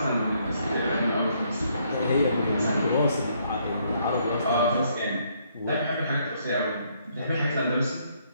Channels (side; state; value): both; inverted; correlation -0.70